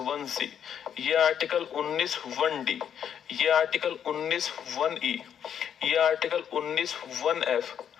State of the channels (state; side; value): quieter; right; 8.8 dB